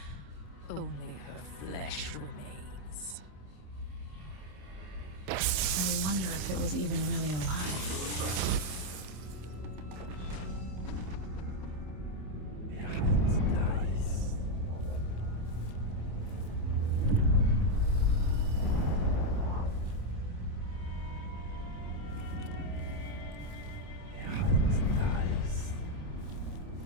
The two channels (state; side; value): late; left; 27 ms